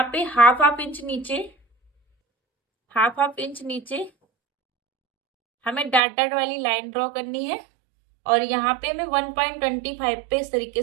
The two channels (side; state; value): left; drops out; at 6.0 s